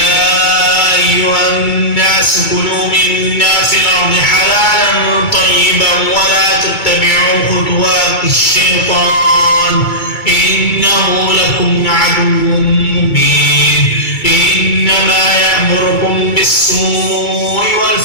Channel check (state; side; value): late; right; 2.3 ms